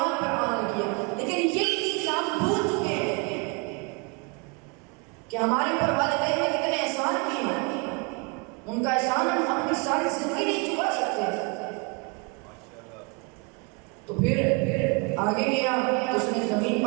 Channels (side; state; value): left; quieter; 31.7 dB